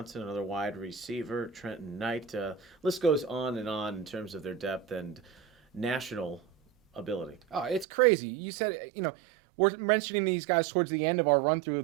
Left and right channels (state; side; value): drops out; left; at 7.9 s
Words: another wide receiver, Trenton Knight. List goes on and on in terms of their depth and national ability. Oh, it's crazy. You said, we're mentioning these guys towards the end of our run through